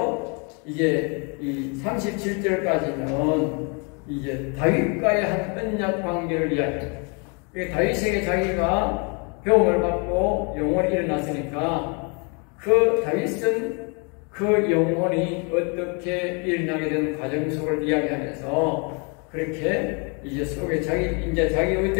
이제 이 37절까지는 이제 다윗과의 한 언약 관계를 이야기합니다. 다윗에게 자기가 배움을 받고 영혼이 일어났으니까 그 다윗은 그 영혼이 어떻게 일어나게 된 과정 속을 이야기하면서 그렇게 이제 속에 자기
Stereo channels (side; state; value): right; quieter; 34.5 dB